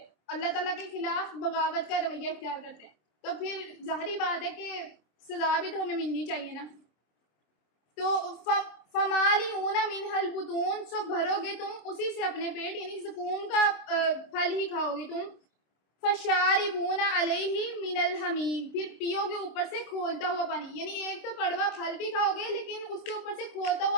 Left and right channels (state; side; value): late; right; 26 ms